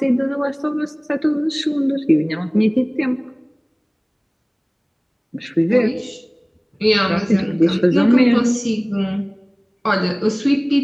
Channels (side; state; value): both; identical; correlation 1.00